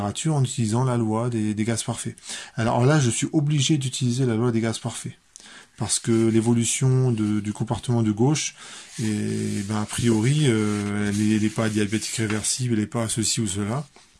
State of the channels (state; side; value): identical; both; correlation 1.00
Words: en utilisant la loi des gaz parfaits. Alors là, je suis obligé d'utiliser la loi des gaz parfaits. Parce que l'évolution du comportement de gauche, a priori, elle n'est pas diabétique réversible, elle n'est pas ceci ou cela.